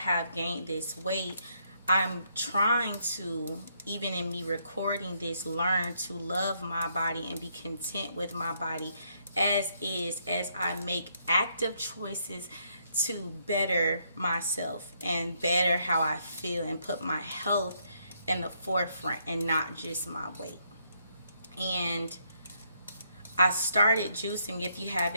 gained this weight, I'm trying to, even in me recording this, learn to love my body and be content with my body as is, as I make active choices to better myself and better how I feel and put my health in the forefront and not just my weight. And I started juicing. If you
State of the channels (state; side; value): inverted; both; correlation -0.74